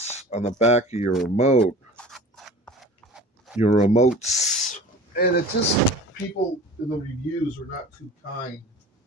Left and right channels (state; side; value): normal; both; correlation 0.40